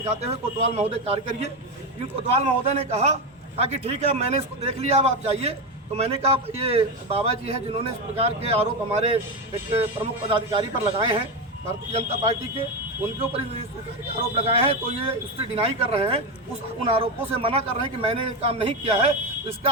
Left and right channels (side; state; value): both; normal; correlation 0.13